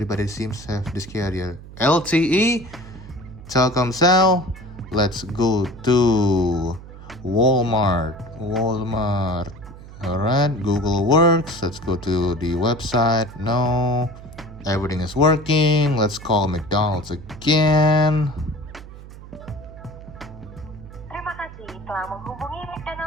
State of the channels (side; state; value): right; noise; hum, 16 dB below the sound